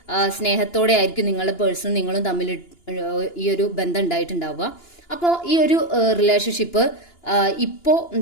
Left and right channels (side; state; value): right; late; 2.9 ms